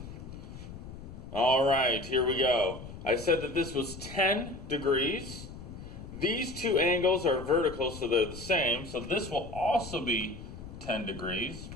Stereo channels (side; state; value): left; noise; rumble, 12 dB below the sound